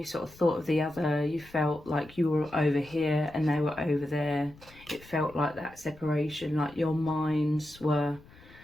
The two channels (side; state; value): left; noise; rumble, 23 dB below the sound